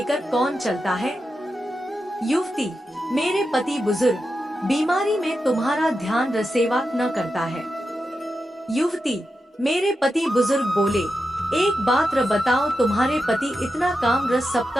कौन चलता है? युवती, मेरे पति। बुजुर्ग, बीमारी में तुम्हारा ध्यान रसेवा न करता है। युवती, मेरे पति। बुजुर्ग बोले, एक बात बताओ, तुम्हारे पति इतना काम रस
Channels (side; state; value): both; normal; correlation 0.89